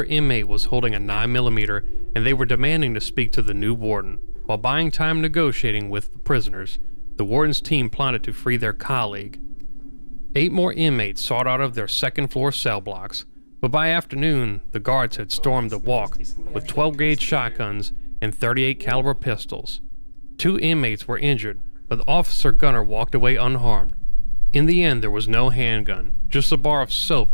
inmate was holding a 9mm and they were demanding to speak to the new warden. While buying time negotiating with the prisoners, the warden's team plotted to free their colleague. 8 more inmates sought out of their 2nd floor cell blocks. But by afternoon, the guards had stormed the walk with 12-gauge shotguns and 38 caliber pistols. 2 inmates were injured, but Officer Gunner walked away unharmed. In the end, there was no handgun, just a bar of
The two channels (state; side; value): inverted; both; correlation -1.00